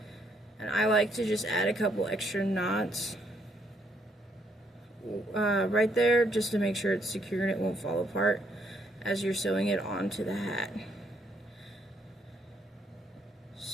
and I like to just add a couple extra knots right there just to make sure it's secure and it won't fall apart as you're sewing it onto the hat.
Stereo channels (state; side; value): normal; both; correlation 0.72